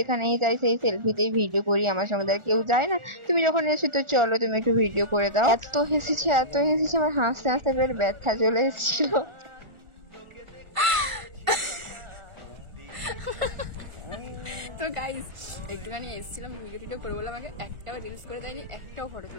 যাই সেই সেলফিতেই ভিডিও করি, আমার সঙ্গে আর কেউ যায় না। তুমি যখন এসো তো চলো তুমি একটু ভিডিও করে দাও। এত হেসেছি আমার হাসতে হাসতে বের ব্যথা চলে এসেছিল। তো গাইস একটুখানি এসেছিলাম ভিডিও টিডিও করে, বললাম আমাকে একটাও রিলস করে দেয়নি, একটাও ফটো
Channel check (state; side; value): late; left; 1.4 ms